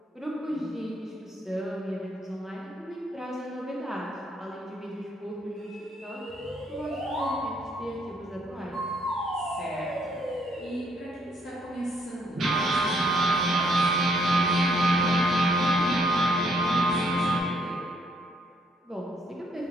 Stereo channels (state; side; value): normal; both; correlation 0.69